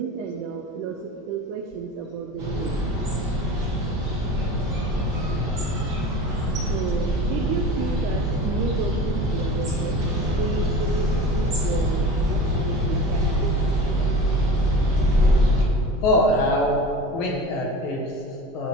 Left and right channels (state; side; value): normal; both; correlation 0.35